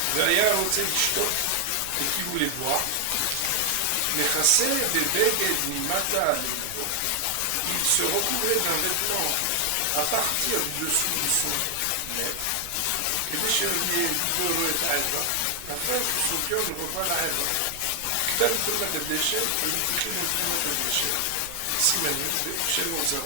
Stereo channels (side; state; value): both; different; correlation 0.00